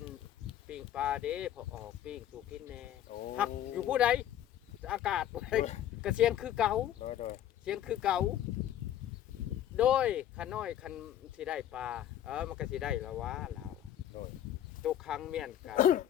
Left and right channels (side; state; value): right; quieter; 11.2 dB